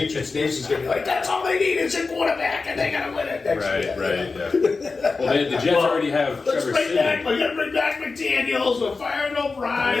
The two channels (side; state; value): right; quieter; 4.2 dB